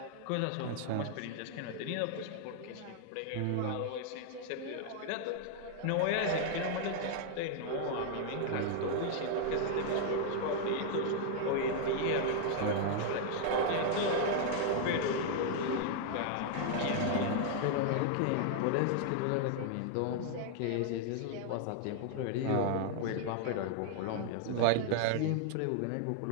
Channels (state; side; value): different; both; correlation 0.00